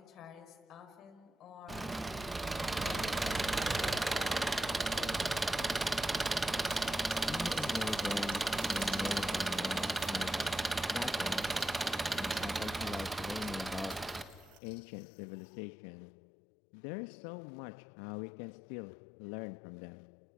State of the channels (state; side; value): drops out; right; at 14.6 s